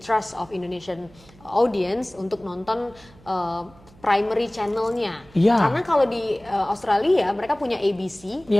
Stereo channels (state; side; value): noise; right; hum, 26 dB below the sound